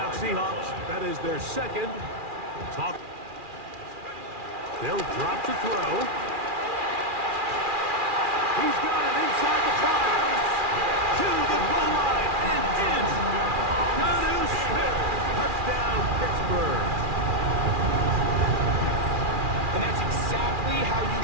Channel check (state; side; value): late; left; 2.4 ms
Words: Seahawks. That is their second. They'll drop to throw. He's got it inside the 5. To the goal line and in. Jonnu Smith. Touchdown, Pittsburgh. And that's exactly how you